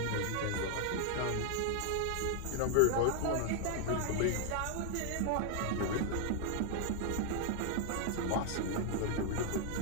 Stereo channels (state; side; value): different; both; correlation 0.00